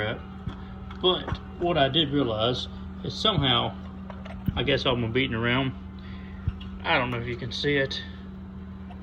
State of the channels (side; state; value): both; identical; correlation 1.00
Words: But what I did realize is somehow, I guess I'm beating around. I don't know if you can see it.